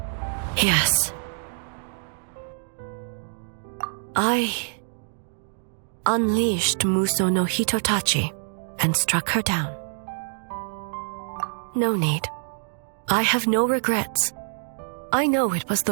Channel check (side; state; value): left; silent; 61 dB below the other